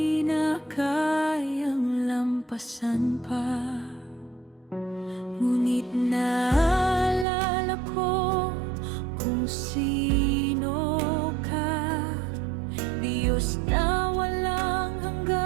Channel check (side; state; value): left; drops out; at 7.2 s